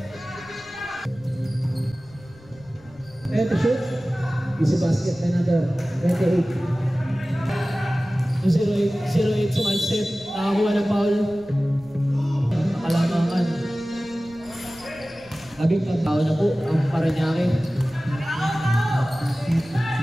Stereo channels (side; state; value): left; noise; rumble, 26 dB below the sound